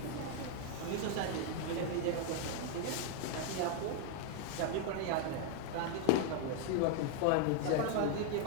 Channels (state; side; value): different; both; correlation 0.00